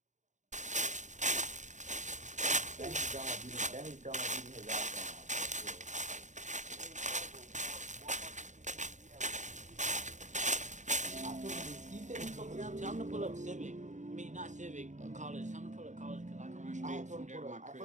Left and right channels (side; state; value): left; late; 0.35 ms